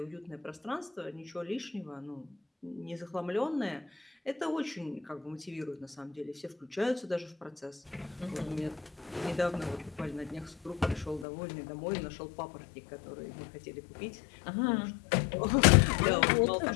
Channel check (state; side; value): drops out; right; at 11.2 s